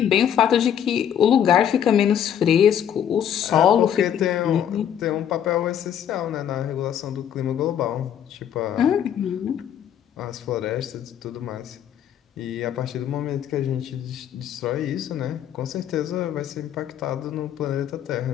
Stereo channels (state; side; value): quieter; right; 9.4 dB